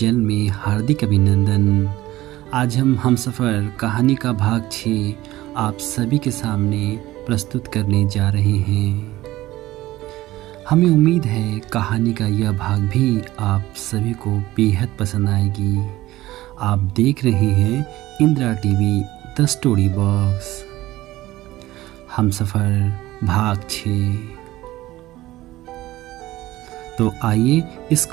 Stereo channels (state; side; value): quieter; left; 16.6 dB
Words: में हार्दिक अभिनंदन। आज हम हमसफ़र कहानी का भाग 6 आप सभी के सामने प्रस्तुत करने जा रहे हैं। हमें उम्मीद है कहानी का यह भाग भी आप सभी को बेहद पसंद आएगी। आप देख रहे हैं Indira TV the story box हमसफ़र भाग 6। तो आइए इस